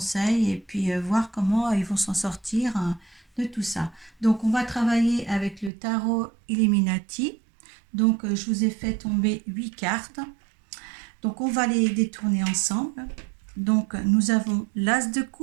et puis voir comment ils vont s'en sortir de tout ça. Donc, on va travailler avec le tarot Illuminati. Donc, je vous ai fait tomber 8 cartes. Donc, on va les détourner ensemble. Donc, nous avons l'As de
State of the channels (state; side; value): drops out; left; at 5.7 s